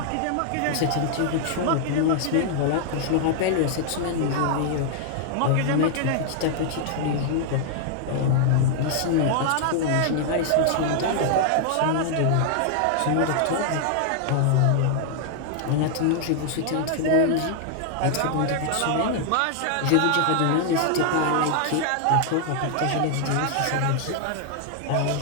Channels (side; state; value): both; different; correlation 0.00